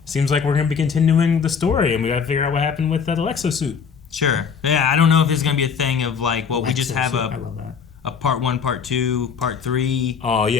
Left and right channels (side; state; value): right; quieter; 6.3 dB